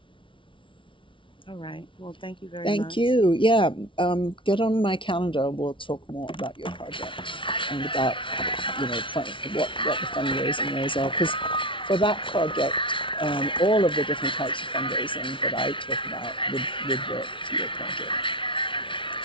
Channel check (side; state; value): right; late; 0.25 ms